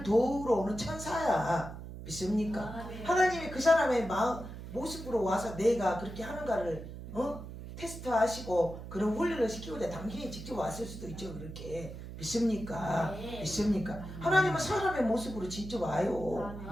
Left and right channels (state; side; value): noise; right; hum, 11 dB below the sound